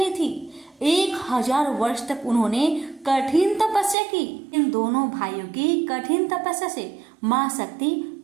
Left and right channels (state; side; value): drops out; left; at 4.0 s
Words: थी। 1000 वर्ष तक उन्होंने कठिन तपस्या की। इन दोनों भाइयों की कठिन तपस्या से माँ शक्ति